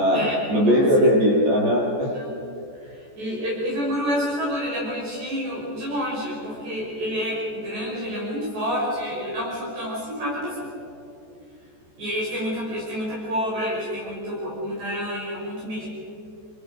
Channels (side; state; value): left; late; 14 ms